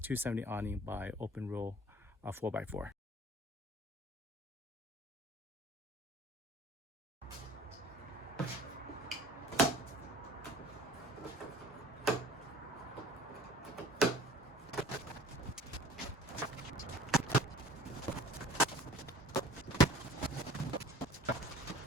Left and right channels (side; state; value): both; normal; correlation 0.47